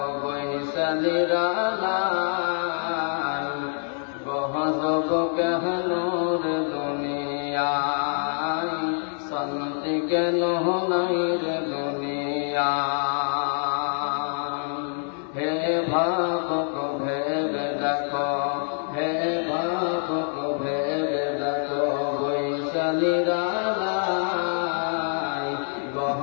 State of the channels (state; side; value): silent; right; 61 dB below the other